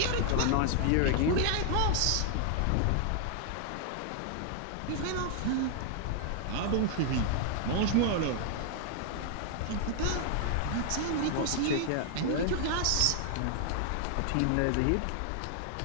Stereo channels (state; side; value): different; both; correlation 0.00